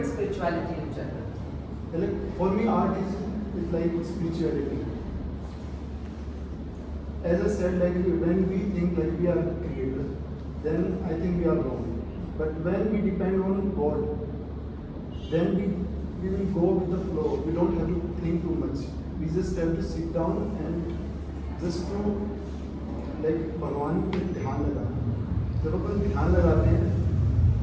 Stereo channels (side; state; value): both; identical; correlation 1.00